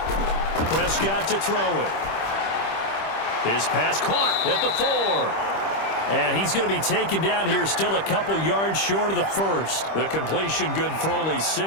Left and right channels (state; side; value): late; right; 25 ms